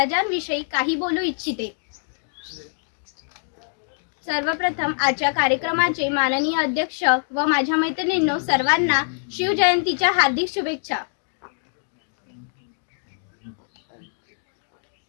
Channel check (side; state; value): right; silent; digital silence